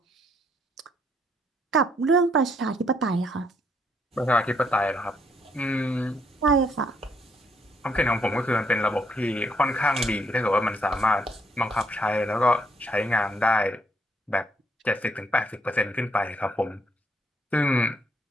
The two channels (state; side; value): normal; both; correlation 0.72